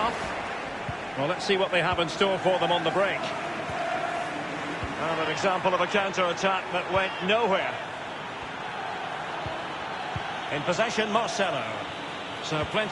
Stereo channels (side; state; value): both; identical; correlation 1.00